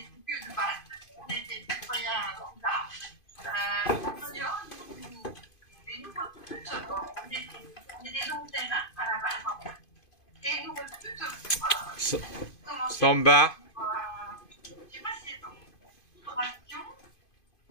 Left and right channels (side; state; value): right; late; 2.5 ms